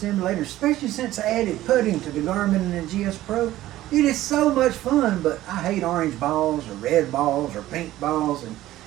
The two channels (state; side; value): quieter; left; 15.0 dB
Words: especially since I added putting to the Garmin and the GSPro. It is so much fun, but I hate orange balls or red balls or pink balls, and